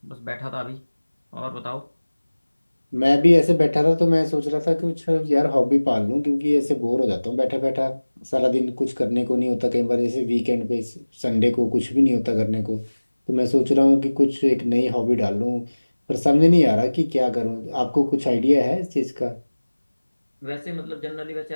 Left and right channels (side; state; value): both; inverted; correlation -1.00